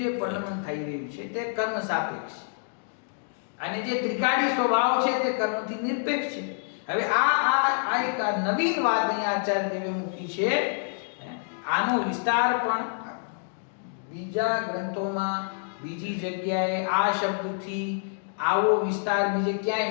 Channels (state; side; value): silent; right; digital silence